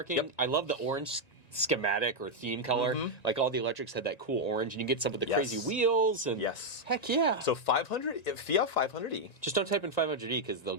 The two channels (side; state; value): right; late; 1.9 ms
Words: Yep. I love the orange schematic or theme color. Like all the electrics had that cool orange, and you get some of the crazy wheels. And heck yeah. So 500 Fiat 500e. Just don't type in 500e because they'll